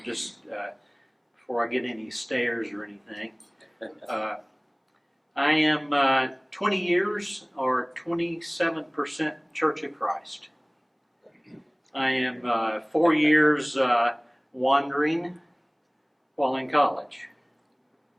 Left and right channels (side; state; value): both; identical; correlation 1.00